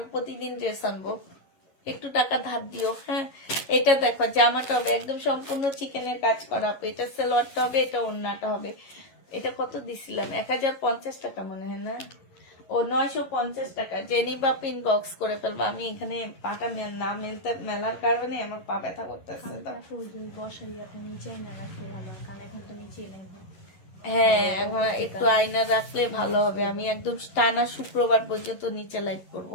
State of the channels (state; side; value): late; right; 11 ms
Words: প্রতিদিন ড্রেস আনবো। একটু টাকা ধার দিও, হ্যাঁ। এটা দেখো, জামাটা হবে একদম সম্পূর্ণ চিকেনের কাজ করা আপু, এটা সালোয়ারটা হবে, এটা ওড়নাটা হবে। এটা কত দিছিলাম, 1050 টাকা মনে হয় না, ও 950 টাকা। জেনি বা পিন বক্স করে ফেলবো। আমি এখানে পাটা না মেলতে মেলার কারণে আমার পা ব্যথা করতেছে। বসাই আপনি নিচে না রাখলে ভালো হয়, কারণ এখন তো নিচে নেই। হ্যাঁ, এখন একটু আয়না রাখলে ভালো হবে। আমি একদম টানা শুক্রবার পর্যন্ত নিচে লাইভ করব।